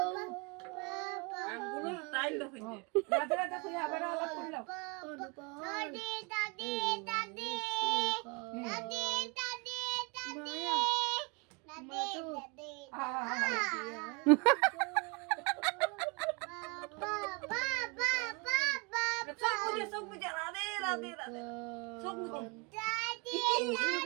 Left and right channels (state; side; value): quieter; left; 30.3 dB